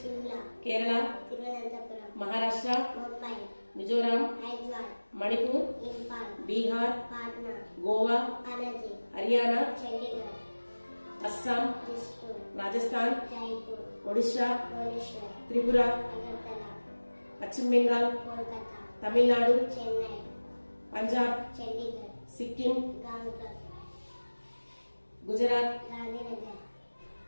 Kerala, Maharashtra, Mizoram, Manipur, Bihar, Goa, Haryana, Assam, Rajasthan, Odisha, Tripura, Paschim Bengal, Tamil Nadu, Punjab, Sikkim, Gujarat,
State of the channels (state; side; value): inverted; both; correlation -1.00